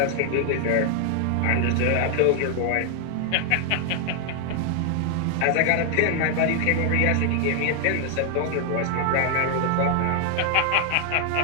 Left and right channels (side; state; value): both; different; correlation 0.00